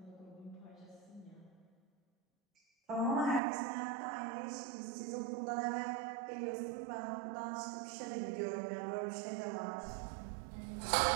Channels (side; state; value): left; drops out; at 3.4 s